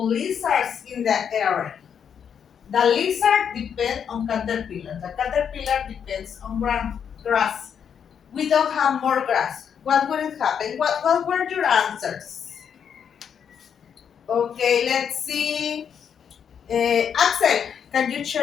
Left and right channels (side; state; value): right; quieter; 7.8 dB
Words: lizards in the area? The lizard depends on caterpillar. The caterpillar depends on grass. We don't have more grass. What would it happen? What were your answers? Okay, let's see. Axel, can you